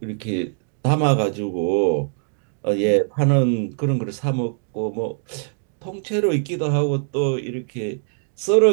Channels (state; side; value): silent; left; digital silence